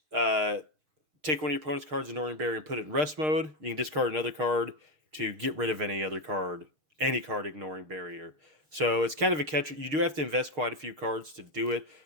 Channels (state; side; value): late; left; 6.5 ms